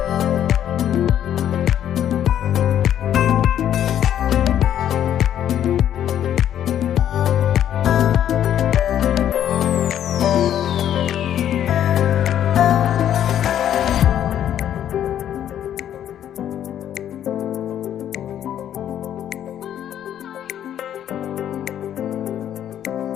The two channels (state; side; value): quieter; right; 10.5 dB